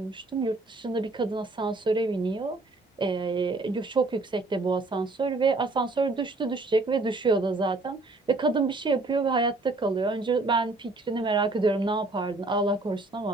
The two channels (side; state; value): left; quieter; 3.2 dB